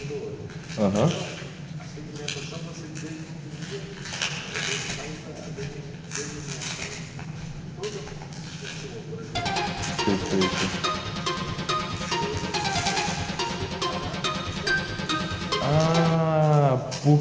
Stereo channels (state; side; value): identical; both; correlation 1.00